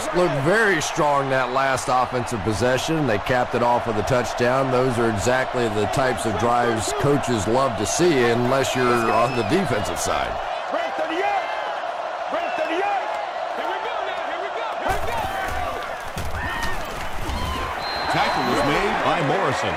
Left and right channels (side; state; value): both; identical; correlation 1.00